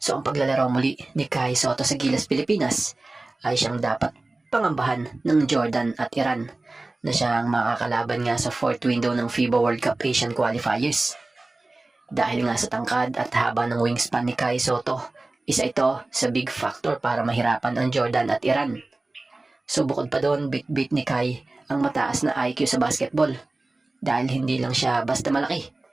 ang paglalaro muli ni Kai Sotto sa Gilas Pilipinas ay siyang dapat pangambahan ng Jordan at Iran na siyang makakalaban nga sa 4th window ng FIBA World Cup Asian Qualifiers. Dahil nga sa tangkad at haba ng wingspan ni Kai Sotto, isa ito sa big factor para mahirapan ang Jordan at Iran. So bukod pa doon, bit ni Kai ang mataas na IQ sa basketball dahil hindi lang siya basta malaki.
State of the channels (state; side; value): quieter; left; 3.0 dB